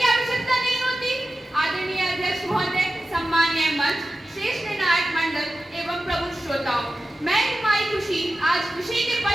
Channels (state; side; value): normal; both; correlation 0.93